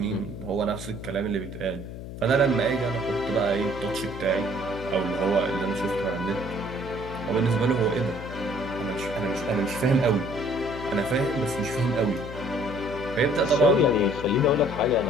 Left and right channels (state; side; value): noise; left; hum, 10 dB below the sound